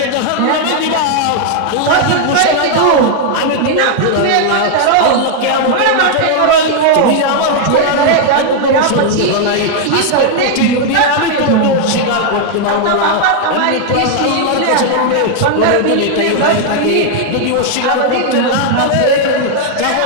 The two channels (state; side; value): different; both; correlation 0.00